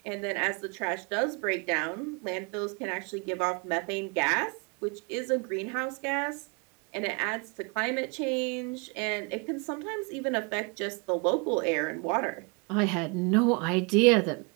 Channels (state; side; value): quieter; left; 33.1 dB